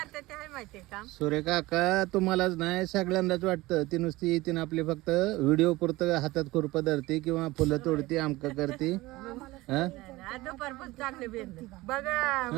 ते आहे माहितीये का सूर्य काका तुम्हालाच नाही सगळ्यांनाच वाटतं ती नुसती येते ना आपली फक्त व्हिडिओ पुरतं हातात खुरपं धरते किंवा फुलं तोडते आमक करते हा? दुपारपासून चांगले बेंद बघा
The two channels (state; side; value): quieter; left; 19.8 dB